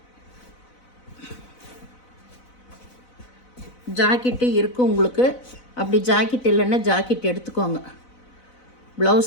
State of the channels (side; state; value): right; late; 4.0 ms